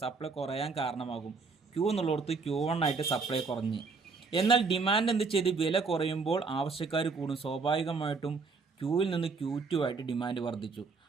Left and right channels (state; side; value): quieter; left; 4.6 dB